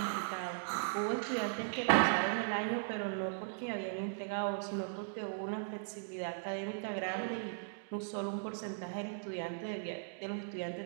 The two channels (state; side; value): silent; left; digital silence